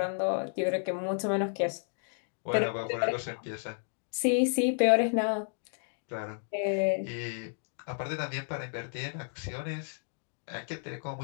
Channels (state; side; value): silent; right; digital silence